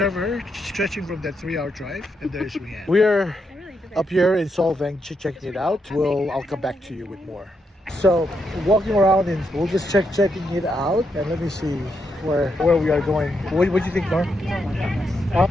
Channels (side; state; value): both; normal; correlation 0.81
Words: stretching from that 3-hour drive, and there's Rianne. We're up here in Solvang checking it out. I'll come back to you with more. So walking around and we'll just checking it out, and let me see where we are going. What do you think, Norm? Huh?